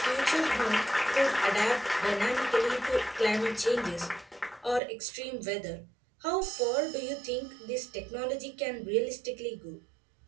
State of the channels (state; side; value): drops out; left; at 4.8 s